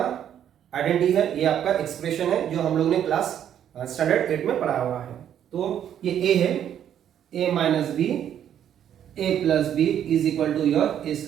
आइडेंटिटी है, ये आपका एक्सप्रेशन है जो हम लोग ने क्लास स्टैंडर्ड 8 में पढ़ा हुआ है। तो ये a है, a minus b a plus b is equal to your a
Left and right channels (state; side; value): quieter; left; 9.9 dB